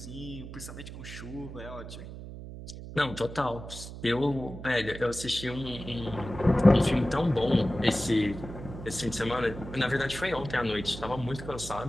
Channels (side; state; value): right; noise; hum, 11 dB below the sound